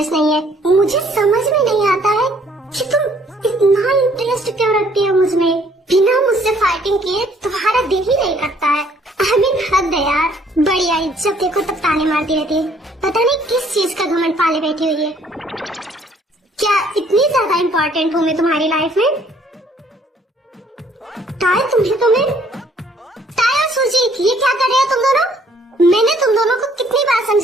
नहीं है। मुझे समझ में नहीं आता है कि तुम इतना इंटरेस्ट क्यों रखती हो मुझ में। बिना मुझसे फाइटिंग किए तुम्हारा दिल ही नहीं करता है। I mean, हद है यार। बड़ी आई जब देखो तब ताने मारती रहती है। पता नहीं किस चीज का घमंड पाले बैठी हुई है। क्या इतनी ज्यादा इम्पोर्टेंट हूँ मैं तुम्हारी लाइफ में? टाई और सुजीत, ये क्या कर रहे हो तुम दोनों? मैंने तुम दोनों को कितनी बार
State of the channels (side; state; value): both; normal; correlation 0.62